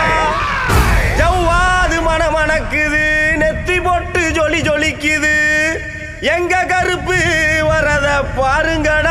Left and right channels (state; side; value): identical; both; correlation 1.00